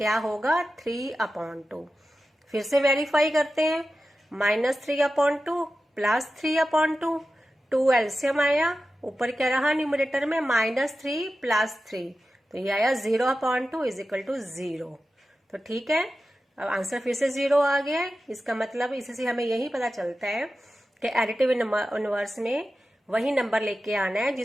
होगा, 3/2। फिर से वेरीफाई करते हैं, -3/2 +3/2, 2 एलसीएम आया, ऊपर क्या रहा न्यूमरेटर में -3 + 3, तो ये आया 0/2 = 0। तो ठीक है, अब आंसर फिर से 0 आ गया है। इसका मतलब इससे हमें यही पता चलता है कि एडिटिव इनवर्स में वही नंबर लेके आना है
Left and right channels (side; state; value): both; normal; correlation 0.93